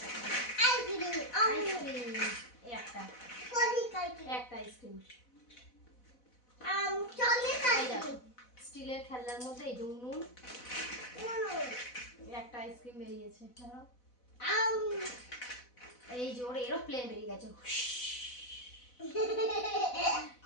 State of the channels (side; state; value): right; late; 4.0 ms